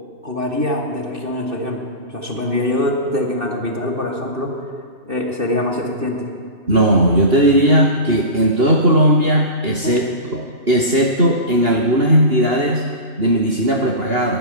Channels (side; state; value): left; late; 2.8 ms